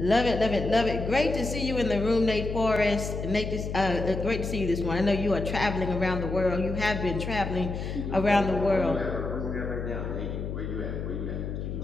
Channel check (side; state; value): left; noise; hum, 5 dB below the sound